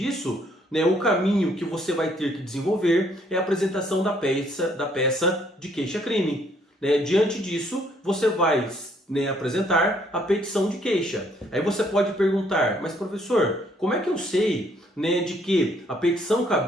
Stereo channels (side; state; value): both; normal; correlation 0.66